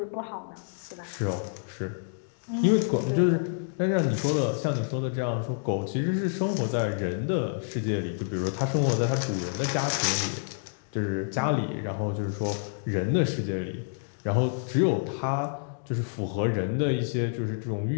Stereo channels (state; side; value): silent; right; digital silence